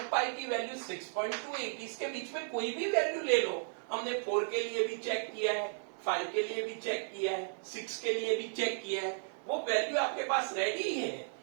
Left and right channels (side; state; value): left; silent; 55 dB below the other